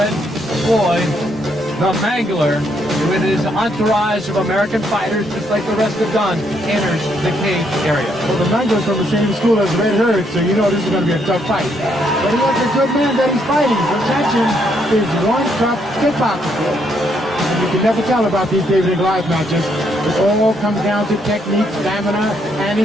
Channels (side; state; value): both; normal; correlation 0.73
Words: Floyd, the Mangler, with his entourage of American fighters, just like the rest have done, enters the cage area. Well, the Mangler's from the same school as Red Herd, so you know this is going to be a tough fight. But he has a good man that he's fighting. Vovchanchyn is one tough kickboxer. And you can never tell about these David and Goliath matches. It all comes down to technique, stamina, and